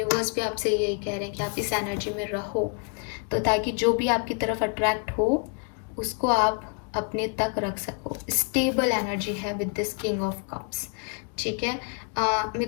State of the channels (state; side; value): quieter; right; 39.5 dB